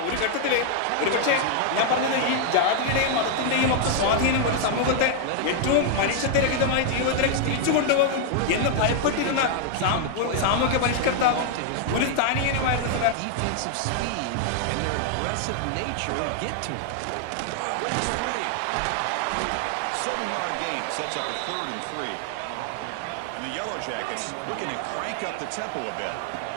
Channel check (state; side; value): different; both; correlation 0.00